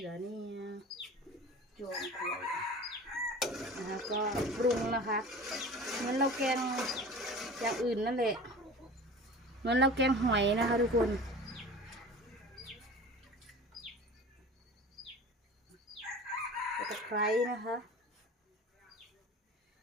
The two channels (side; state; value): both; normal; correlation 0.38